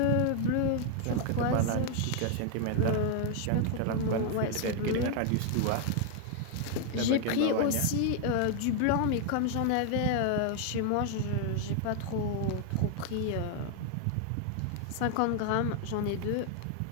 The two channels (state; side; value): different; both; correlation 0.00